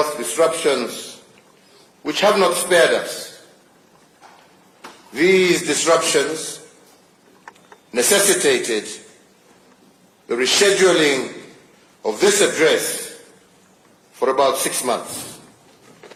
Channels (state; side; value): identical; both; correlation 1.00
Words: disruptions which have not spared us. These disruptions necessitated the rescheduling of this address for about 6 months.